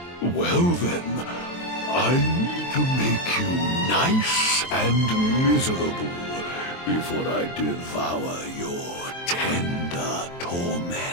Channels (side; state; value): right; late; 23 ms